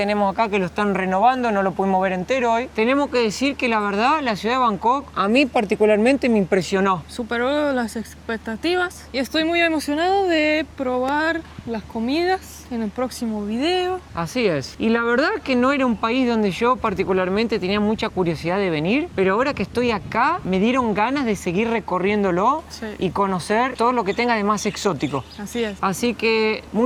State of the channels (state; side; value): identical; both; correlation 1.00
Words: acá, que lo están renovando, no lo pudimos ver entero hoy. Tenemos que decir que la verdad, la ciudad de Bangkok a mí particularmente me impresionó. Superó las expectativas y estoy muy emocionado de probar las comidas en el próximo video. Así es. Y la verdad que no era un país donde yo particularmente tenía mucha curiosidad de venir, pero ahora que estoy acá me dieron ganas de seguir recorriéndolo Sí. y conocer todo lo que tenga de más exótico. Así es. Así que